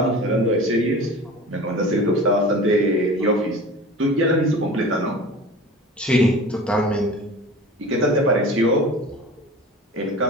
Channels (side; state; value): both; normal; correlation 0.38